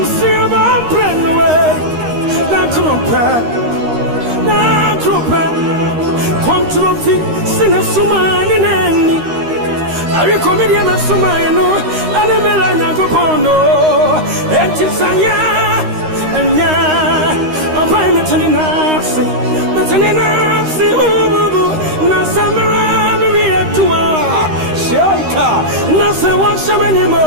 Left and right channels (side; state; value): left; late; 13 ms